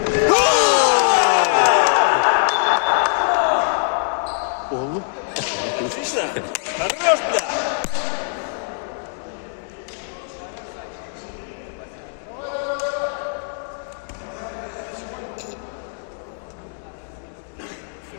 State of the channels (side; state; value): right; silent; digital silence